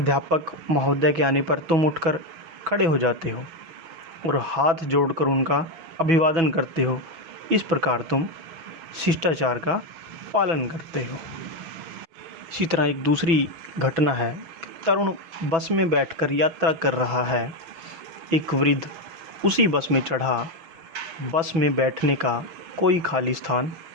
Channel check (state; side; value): late; left; 6.1 ms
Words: महोदय के आने पर तुम उठकर खड़े हो जाते हो और हाथ जोड़कर उनका अभिवादन करते हो। इस प्रकार तुम शिष्टाचार का पालन करते हो। इसी तरह एक दूसरी घटना है। तरुण बस में बैठकर यात्रा कर रहा है। एक वृद्ध उसी बस में चढ़ा। बस में बैठने का कोई खाली स्थान